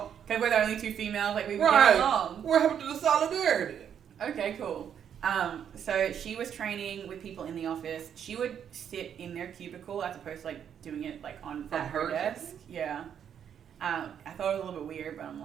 because we're the only two females, like, we would Right. get along. What happened to the solidarity? Okay, cool. So she was training with people in the office. She would sit in their cubicle as opposed to, like, doing it, like, on From at her her desk. cubicle? Yeah. I thought it was a little bit weird, but I'm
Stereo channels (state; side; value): quieter; left; 8.6 dB